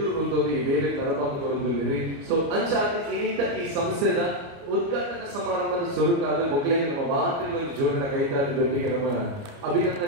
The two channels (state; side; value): late; left; 29 ms